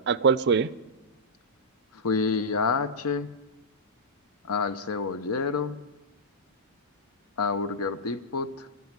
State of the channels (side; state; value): both; normal; correlation -0.12